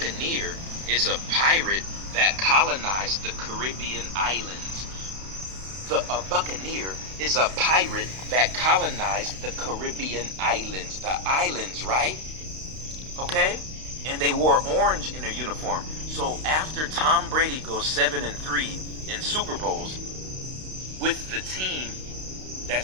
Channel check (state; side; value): late; left; 32 ms